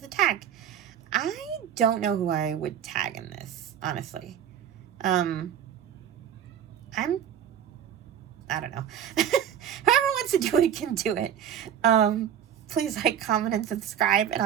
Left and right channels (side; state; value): left; quieter; 9.5 dB